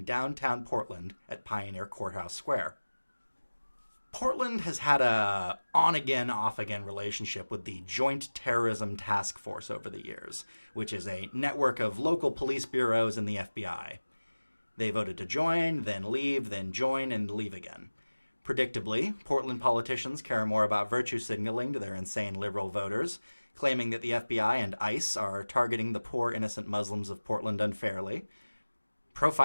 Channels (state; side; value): inverted; both; correlation -1.00